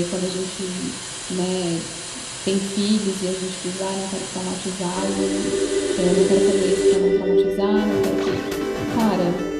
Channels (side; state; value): both; identical; correlation 1.00